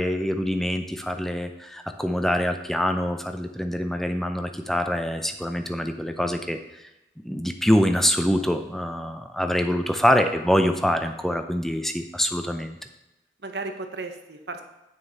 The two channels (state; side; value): normal; both; correlation 0.86